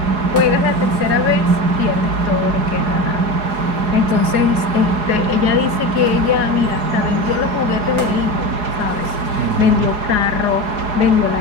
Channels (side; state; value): left; late; 4.8 ms